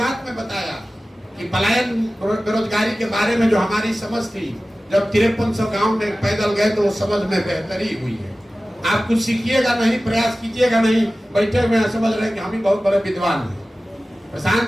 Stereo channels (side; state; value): both; normal; correlation 0.96